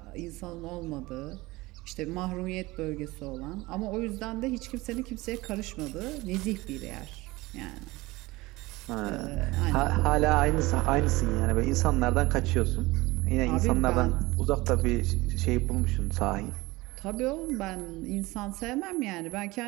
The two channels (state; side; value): quieter; left; 20.7 dB